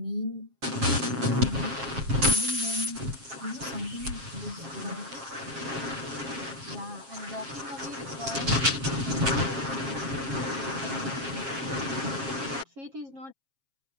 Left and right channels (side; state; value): left; late; 7.4 ms